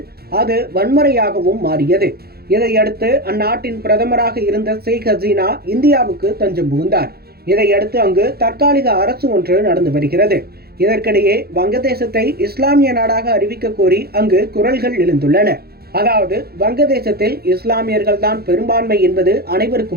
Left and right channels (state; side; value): late; left; 0.46 ms